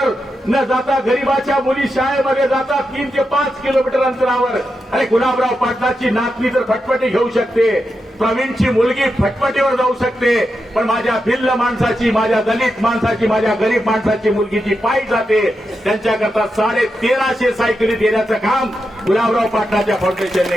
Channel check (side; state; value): both; normal; correlation 0.87